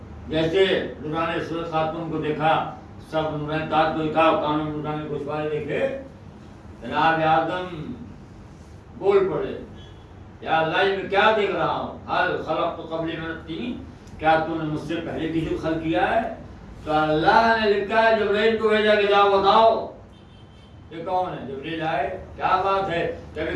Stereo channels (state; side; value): identical; both; correlation 1.00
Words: جیسے نورانی صورت خاتون کو دیکھا, سب نورانی تاج کو دیکھا, کانوں میں نورانی گوشوارے دیکھے. جناب آدم بول پڑے, یا اللہ میں کیا دیکھ رہا ہوں؟ حل خلق تو قبل من الطین, کیا تو نے مجھ سے پہلے کسی کو خلق کیا ہے؟ تو اللہ نے لکھا ہے جبرائیل کو بھیجا کہ جاؤ بتاؤ یہ کون ہے. جبرائیل آئے, کیا بات ہے؟ کہ